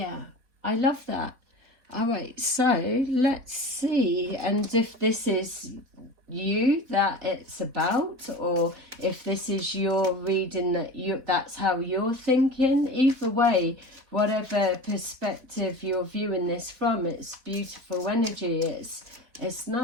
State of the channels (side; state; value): left; late; 4.1 ms